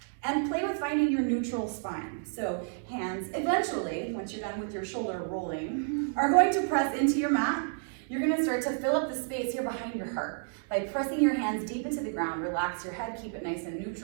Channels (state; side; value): silent; left; digital silence